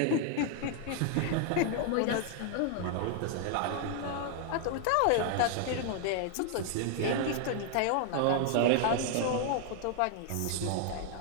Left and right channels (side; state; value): both; different; correlation 0.00